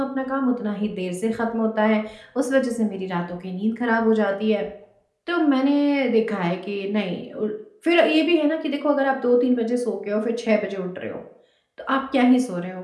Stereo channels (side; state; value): both; identical; correlation 1.00